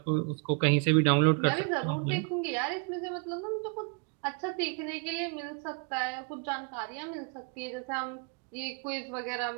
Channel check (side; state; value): left; quieter; 37.0 dB